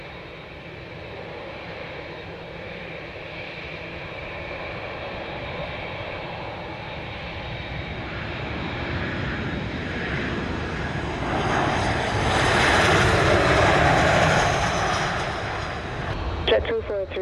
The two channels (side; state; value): both; identical; correlation 1.00